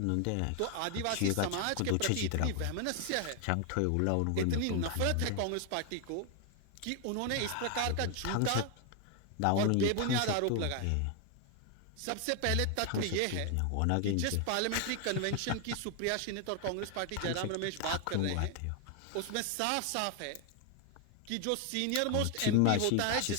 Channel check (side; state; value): both; different; correlation 0.00